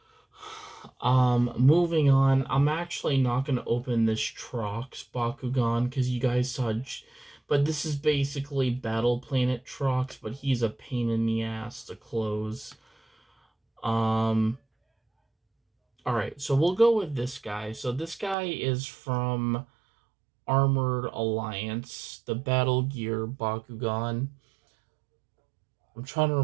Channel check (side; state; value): left; drops out; at 18.4 s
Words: Moving on, I'm actually not going to open this Trox Bakugan because you guys saw, but this is basically Battle Planet Trox, but he's a pain in the ass to close. Alright, so we'll go with this guy. So this guy is from Armored Alliance, the Battle Gear Bakugan. I'm trying to